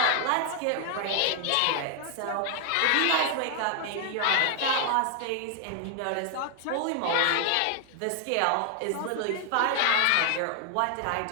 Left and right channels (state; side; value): different; both; correlation 0.00